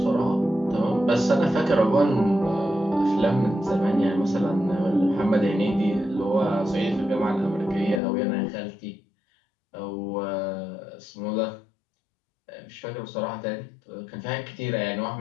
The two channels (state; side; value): drops out; right; at 8.0 s